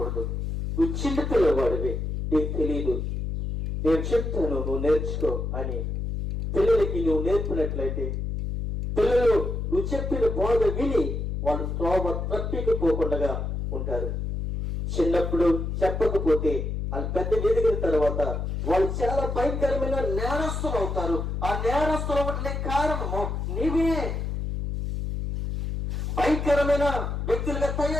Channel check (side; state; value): left; noise; hum, 3 dB below the sound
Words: నువ్వు చిన్న పిల్లవాడివి, నీకు తెలియదు, నేను చెప్తాను నువ్వు నేర్చుకో అని పిల్లలకి నువ్వు నేర్పినట్లయితే పిల్లలు నువ్వు చెప్పిన బోధ విని వాళ్ళు త్రోవ తప్పికపోకుండా ఉంటారు. చిన్నప్పుడు చెప్పకపోతే వాళ్ళు పెద్ద ఎదిగిన తర్వాత వాళ్ళు చాలా భయంకరమైన నేరస్తులు అవుతారు. ఆ నేరస్తులు అవ్వడానికి కారణము నీవే. భయంకరమైన వ్యక్తులుగా